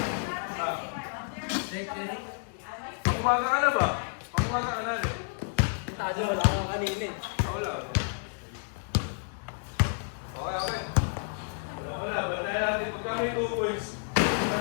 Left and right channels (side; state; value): right; silent; digital silence